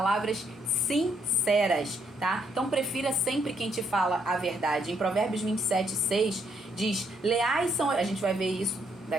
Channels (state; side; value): normal; both; correlation 0.73